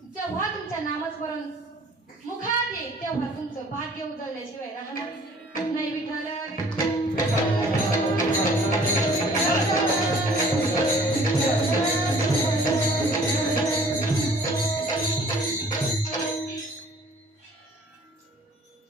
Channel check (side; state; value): both; normal; correlation 0.53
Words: जेव्हा तुमच्या नामस्मरण मुखात येईल तेव्हा तुमचं भाग्य उजळल्याशिवाय राहणार नाही विठ्ठल